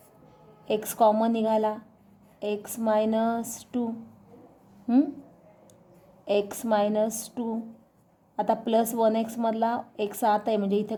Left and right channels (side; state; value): both; identical; correlation 1.00